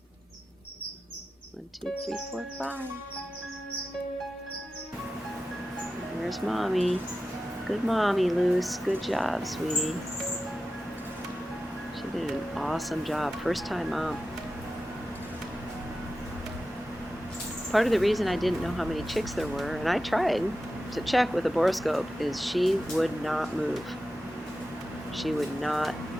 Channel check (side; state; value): both; normal; correlation 0.93